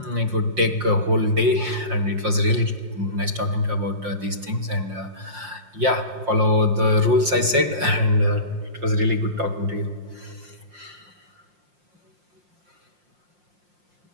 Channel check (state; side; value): late; left; 5.6 ms